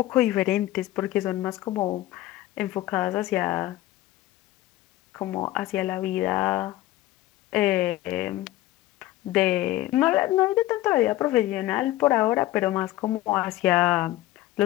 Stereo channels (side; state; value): right; quieter; 15.9 dB